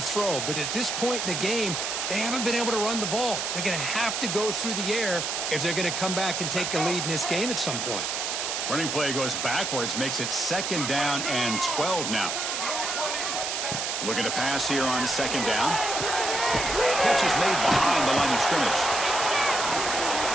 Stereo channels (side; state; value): right; noise; hiss, 2 dB below the sound